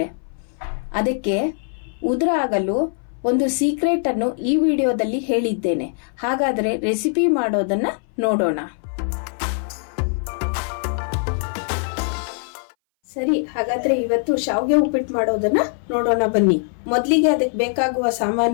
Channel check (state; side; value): silent; right; 61 dB below the other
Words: ಅದಕ್ಕೆ ಉದುರಾಗಲು ಒಂದು ಸೀಕ್ರೆಟ್ ಅನ್ನು ಈ ವಿಡಿಯೋದಲ್ಲಿ ಹೇಳಿದ್ದೇನೆ. ಹಾಗಾದ್ರೆ ರೆಸಿಪಿ ಮಾಡೋದನ್ನ ನೋಡೋಣ. ಸರಿ, ಹಾಗಾದ್ರೆ ಇವತ್ತು ಶಾವಿಗೆ ಉಪ್ಪಿಟ್ಟು ಮಾಡೋದನ್ನ ನೋಡೋಣ ಬನ್ನಿ. ಮೊದಲಿಗೆ ಅದಕ್ಕೆ ಬೇಕಾಗುವ